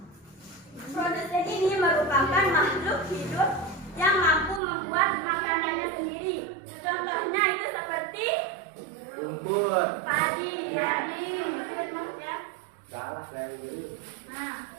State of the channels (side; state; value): left; drops out; at 4.6 s